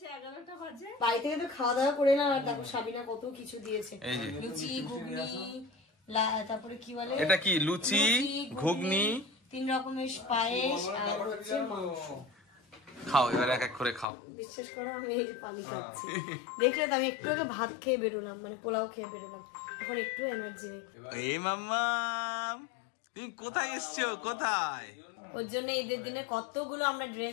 11টা বাজে। বাড়ি থেকে তো খাওয়া দাওয়া করে না, আর দেখো সাবিনা কত কিছু দিয়েছে, এই যে লুচি ঘুগনি, তারপরে কি বলে এটা কি লুচি ঘুগনি 3 রকমের পায়েস আর হচ্ছে মাংস। খাও এবার এক এক করে খাও। বিশ্বাস করো আমি এই যে পানি খাচ্ছি, দেখলে তো আমি একটু আগে ভাত খেয়ে বেরোলাম, মানে পোলাও খেয়ে বেরোলাম, এখন একটু এনার্জি নেই। এই মাম্মাম তুমি কোথায় এসছো? কোথায়? ওর জন্য ঈদের দিনে কতগুলো আমরা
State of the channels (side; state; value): right; drops out; at 14.1 s